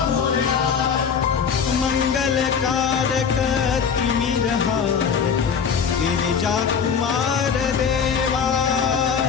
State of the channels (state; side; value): quieter; right; 6.7 dB